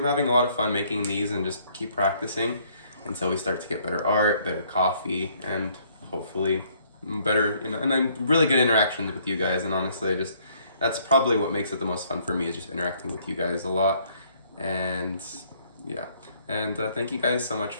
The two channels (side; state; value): both; inverted; correlation -0.64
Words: having a lot of fun making these, and just keep practicing until we start to get better art, better coffee, and hopefully better, you know, and I'm really good interactions with you guys. And honestly, just that's probably what makes it the most fun for me, is just interacting with you guys a lot. And yeah, and thank you guys so much